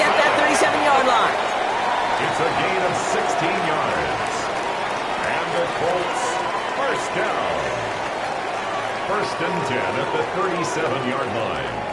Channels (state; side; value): identical; both; correlation 1.00